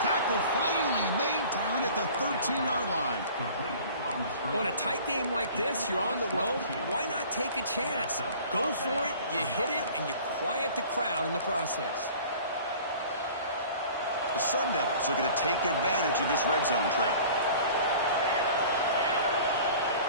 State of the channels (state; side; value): inverted; both; correlation -0.46